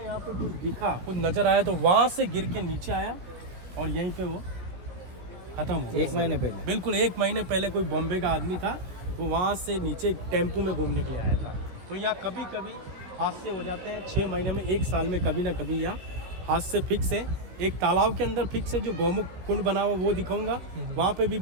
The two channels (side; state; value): left; late; 16 ms